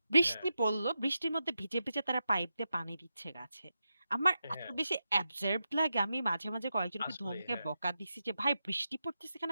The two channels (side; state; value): both; inverted; correlation -0.88